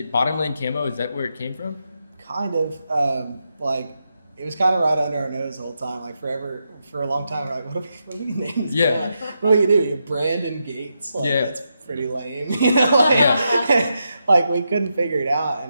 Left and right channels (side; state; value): both; inverted; correlation -0.84